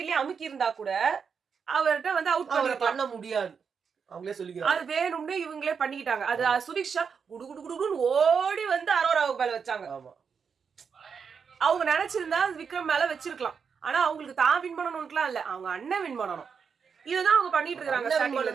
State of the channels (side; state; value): left; quieter; 6.2 dB